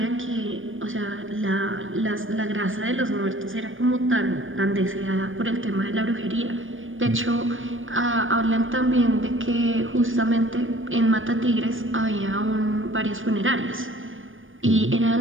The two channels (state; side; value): late; left; 0.58 ms